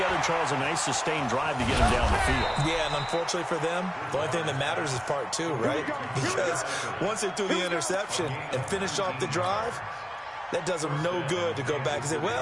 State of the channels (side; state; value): both; identical; correlation 1.00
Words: Charles, a nice sustained drive to get them down the field. Yeah, and unfortunately for them, the only thing that matters is part 2, right? Because once they threw the interception and finished off the drive, that does them no good to go back and say,